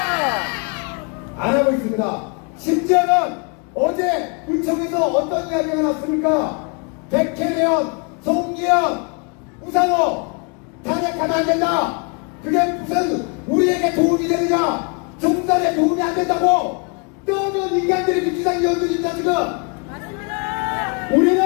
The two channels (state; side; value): quieter; right; 35.3 dB